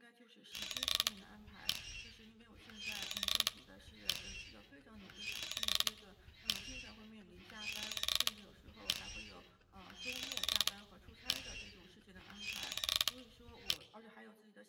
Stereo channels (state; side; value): identical; both; correlation 1.00